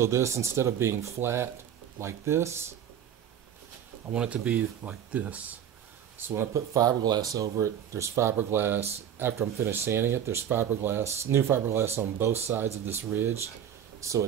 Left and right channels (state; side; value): quieter; left; 9.5 dB